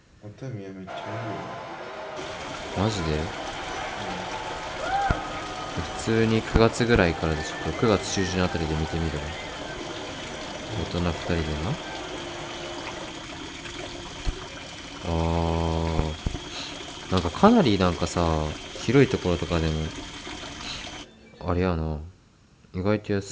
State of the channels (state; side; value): identical; both; correlation 1.00